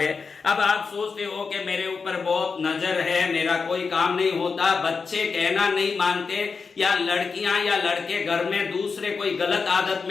अब आप सोचते हो कि मेरे ऊपर बहुत नजर है, मेरा कोई काम नहीं होता, बच्चे कहना नहीं मानते, या लड़कियां या लड़के घर में दूसरे कोई गलत आदत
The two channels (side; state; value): right; quieter; 5.0 dB